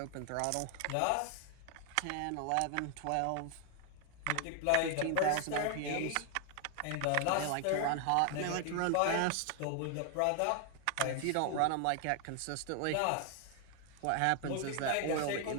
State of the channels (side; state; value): both; different; correlation 0.00